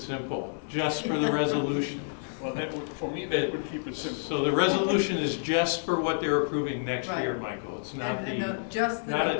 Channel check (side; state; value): right; silent; digital silence